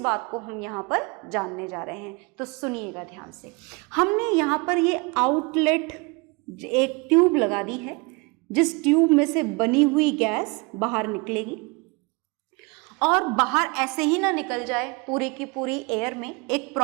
को हम यहाँ पर जानने जा रहे हैं। तो सुनिएगा ध्यान से, हमने यहाँ पर ये आउटलेट एक ट्यूब लगा दी है, जिस ट्यूब में से बनी हुई गैस बाहर निकलेगी, और बाहर ऐसे ही ना निकल जाए पूरी की पूरी एयर में, एक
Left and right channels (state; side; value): quieter; left; 28.2 dB